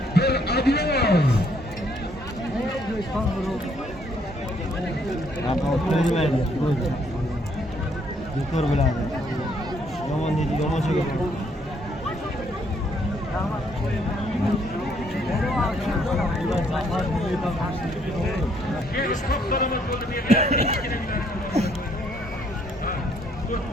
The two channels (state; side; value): normal; both; correlation 0.68